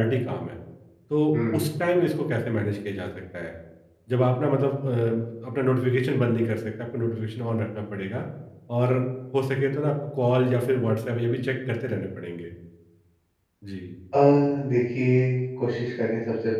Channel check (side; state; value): both; identical; correlation 1.00